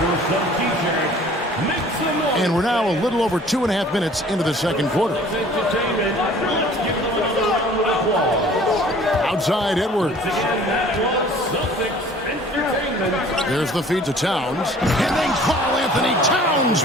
And we're now a little over 2.5 minutes into the second quarter. Outside Edwards. There's the feed to Towns. And then Karl Anthony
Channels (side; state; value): both; normal; correlation 0.50